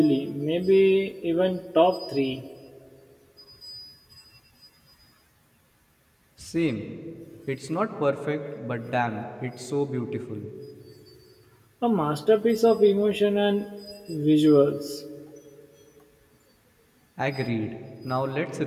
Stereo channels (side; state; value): both; identical; correlation 1.00